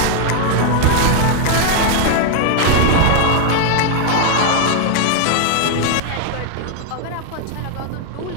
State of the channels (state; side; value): different; both; correlation 0.00